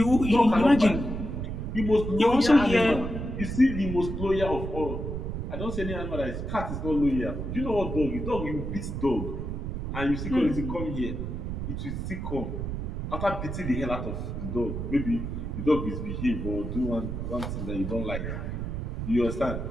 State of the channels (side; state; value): right; noise; rumble, 4 dB below the sound